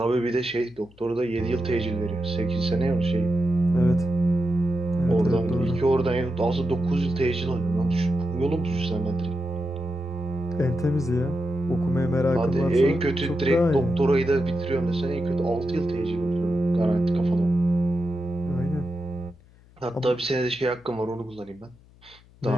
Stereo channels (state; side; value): noise; left; hum, 27 dB below the sound